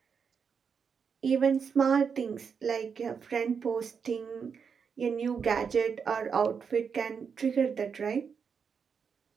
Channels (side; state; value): left; quieter; 6.3 dB